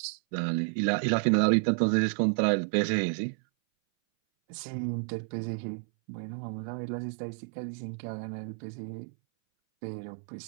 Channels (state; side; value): silent; left; 58 dB below the other